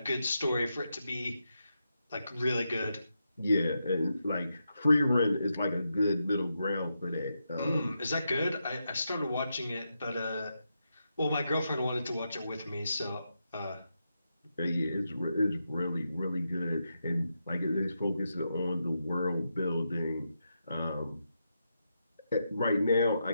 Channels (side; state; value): both; inverted; correlation -0.85